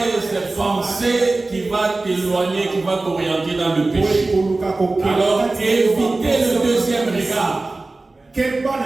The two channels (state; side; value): quieter; left; 3.2 dB